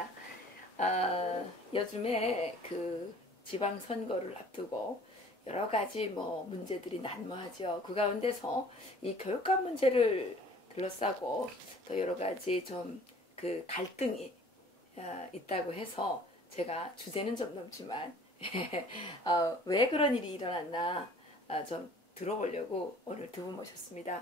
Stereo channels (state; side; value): normal; both; correlation 0.51